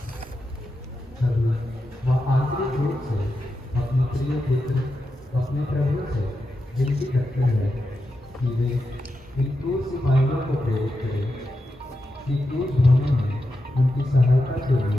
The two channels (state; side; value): normal; both; correlation 0.88